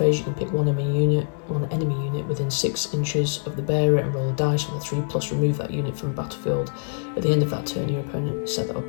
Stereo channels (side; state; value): right; silent; 62 dB below the other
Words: you can pick one enemy unit within 6 inches of the bearer and roll a dice on a 3+, remove that unit from the battlefield. At the end of that turn, your opponent set that